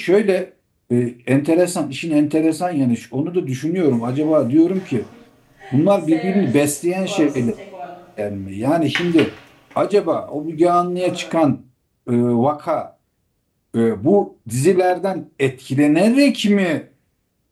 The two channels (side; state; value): both; identical; correlation 1.00